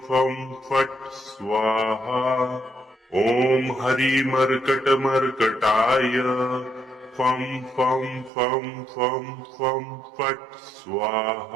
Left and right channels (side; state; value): left; drops out; at 8.3 s